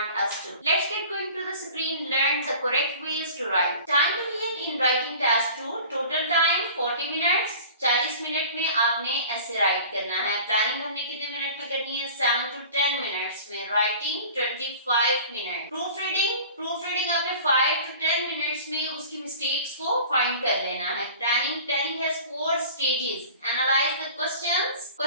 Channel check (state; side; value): inverted; both; correlation -0.42